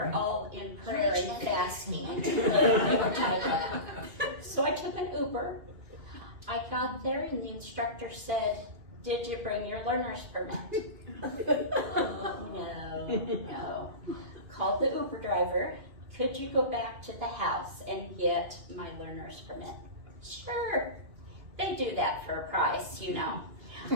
all in prayer and fasting. They were tied up. So I took an Uber. I got there and the instructor said, did you bring your learner's permit? No. Called the Uber driver. Could you go back to the house and get my learner's permit? Sure. They do that for a price, I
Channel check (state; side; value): late; left; 2.4 ms